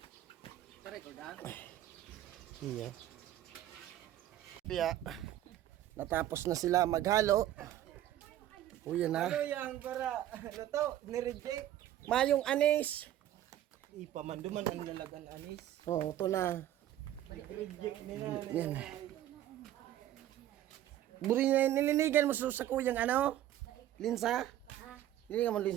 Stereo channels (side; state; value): left; quieter; 12.7 dB